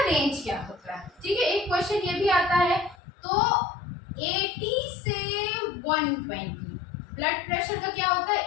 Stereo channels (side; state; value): right; drops out; at 3.0 s